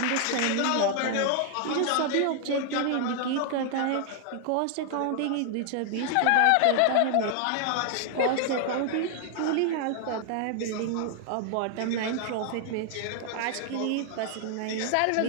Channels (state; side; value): different; both; correlation 0.00